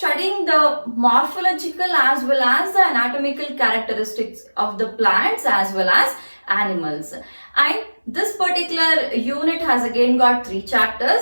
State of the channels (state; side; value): inverted; both; correlation -1.00